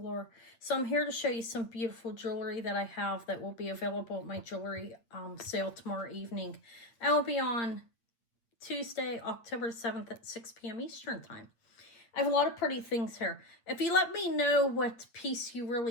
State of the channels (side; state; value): right; late; 8.6 ms